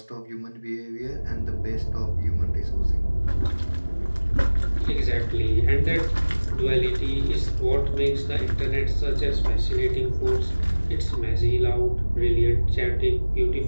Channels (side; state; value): both; inverted; correlation -1.00